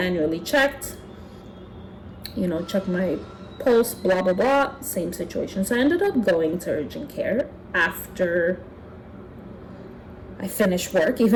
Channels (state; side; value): identical; both; correlation 1.00